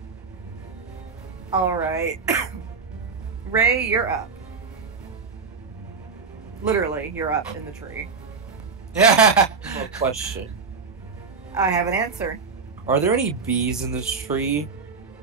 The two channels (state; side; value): quieter; left; 5.0 dB